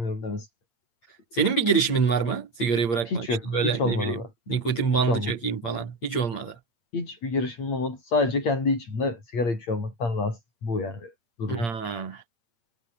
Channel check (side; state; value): right; late; 8.7 ms